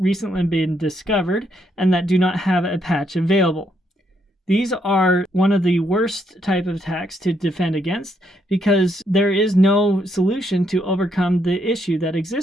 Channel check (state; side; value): normal; both; correlation 0.76